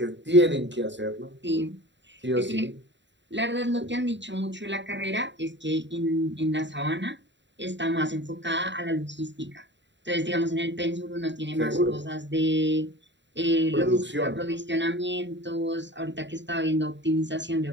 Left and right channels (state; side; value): late; left; 0.52 ms